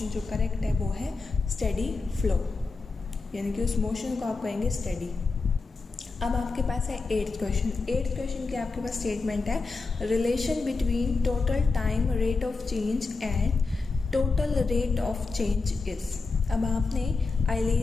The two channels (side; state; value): right; quieter; 4.0 dB